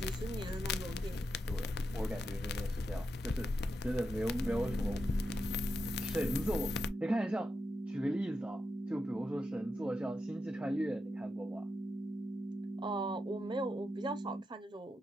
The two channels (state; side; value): normal; both; correlation 0.87